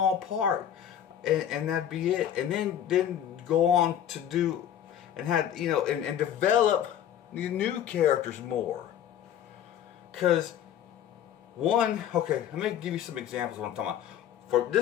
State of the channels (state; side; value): quieter; right; 10.1 dB